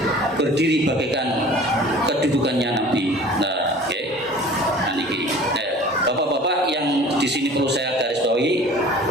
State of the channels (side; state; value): both; normal; correlation 0.45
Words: berdiri bagaikan kedudukannya nabi. Nah, oke. Nah, niki. Bapak-bapak yang di sini perlu saya garis bawahi,